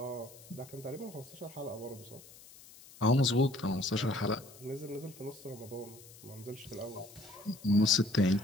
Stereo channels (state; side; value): noise; left; hiss, 20 dB below the sound